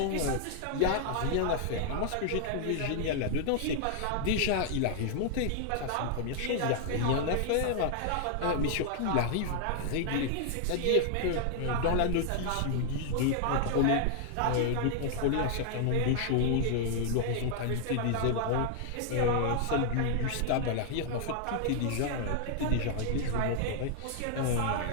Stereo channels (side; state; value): both; different; correlation 0.00